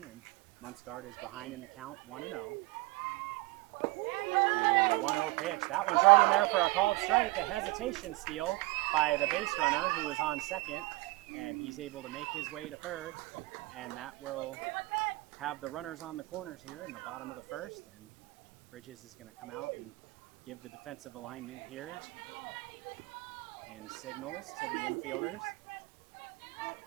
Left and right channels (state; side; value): quieter; left; 22.1 dB